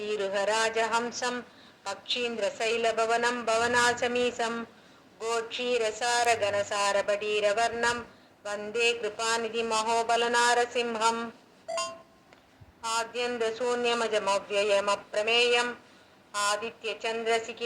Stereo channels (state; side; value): identical; both; correlation 1.00